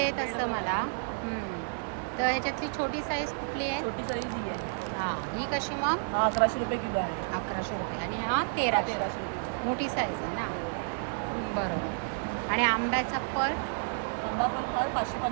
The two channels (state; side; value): silent; left; digital silence